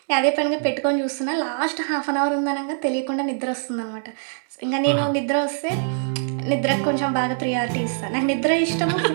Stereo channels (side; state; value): left; silent; digital silence